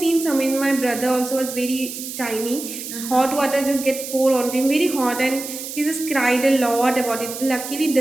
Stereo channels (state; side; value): noise; right; hiss, 9 dB below the sound